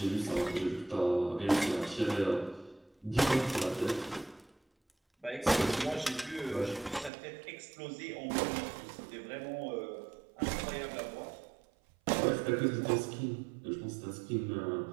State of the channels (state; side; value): drops out; left; at 7.1 s